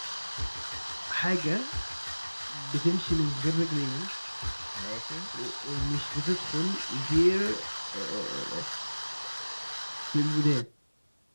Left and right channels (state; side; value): inverted; both; correlation -1.00